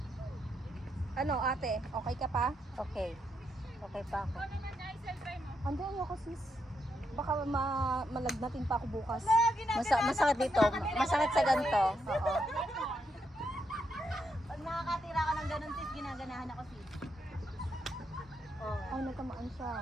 Ano ate, okay ka pa? Okay. Okay pa ako. Ikaw naman ay self-try mo. Andun ako sis. Baka malagnatin pa ako bukas. Masakit dito. Masakit sa ganito. Oo. Pag nakakatira ka ng ganun sis, ginaganahan ako sis. Oh. Ay, nagkamaan siya.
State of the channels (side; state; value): both; normal; correlation 0.80